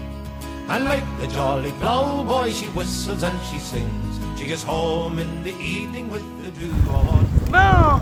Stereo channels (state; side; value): identical; both; correlation 1.00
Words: And like the jolly ploughboy, she whistles and she sings. She gets home in the evening with the dew all on her. Bon,